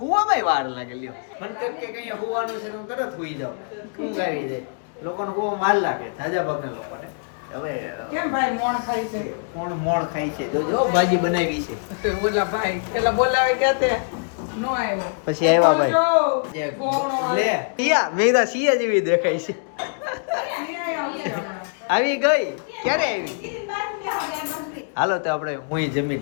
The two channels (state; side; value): silent; right; digital silence